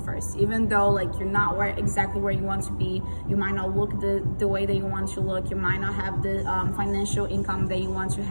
first. Even though like you're not exactly where you want to be, you might not look the way that you want to look, you might not have the financial income that you want to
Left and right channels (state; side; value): inverted; both; correlation -1.00